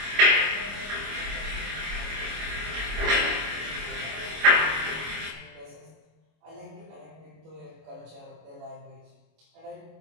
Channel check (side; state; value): left; late; 25 ms